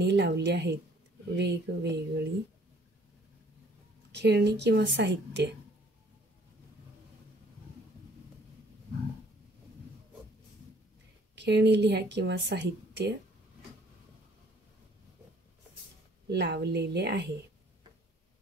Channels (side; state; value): both; normal; correlation 0.58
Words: लावली आहेत. वेगवेगळी खेळणी किंवा साहित्य. खेळणी लिहा किंवा साहित्य लावलेले आहे.